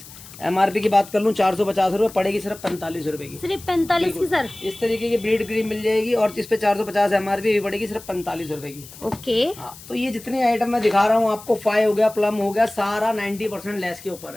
एमआरपी की बात कर लूँ 450 रुपये, पड़ेगी सिर्फ 45 रुपए की, सिर्फ 45 की सर। इस तरीके की ब्रीड क्रीम मिल जाएगी, और इस पे 450 एमआरपी भी पड़ेगी सिर्फ 45 रुपए की। ओके। हाँ, तो ये जितनी आइटम मैं दिखा रहा हूँ आपको, 5 हो गया, प्लम हो गया, सारा 90% लेस के ऊपर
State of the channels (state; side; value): noise; left; hiss, 18 dB below the sound